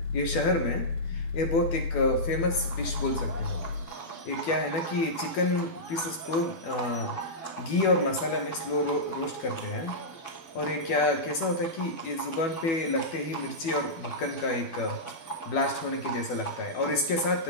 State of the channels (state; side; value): late; right; 12 ms